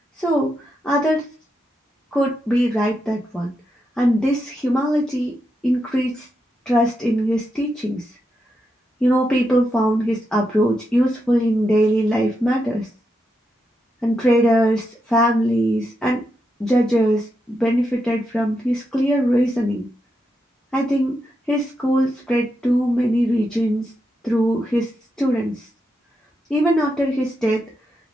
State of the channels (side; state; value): both; normal; correlation 0.84